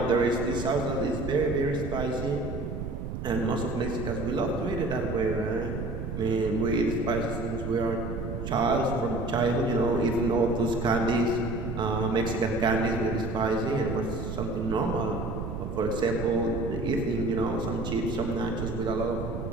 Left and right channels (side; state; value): right; noise; rumble, 5 dB below the sound